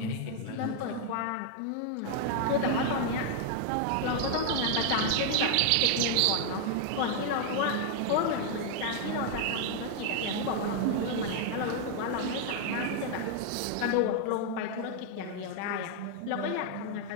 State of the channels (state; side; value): different; both; correlation 0.00